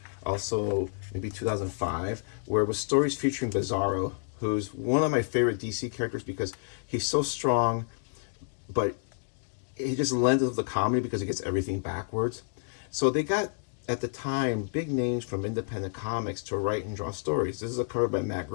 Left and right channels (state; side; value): silent; right; digital silence